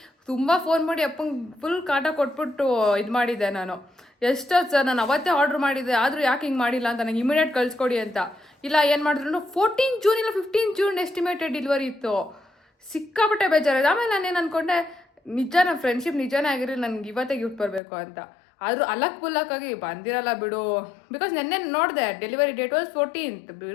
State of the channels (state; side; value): drops out; right; at 17.8 s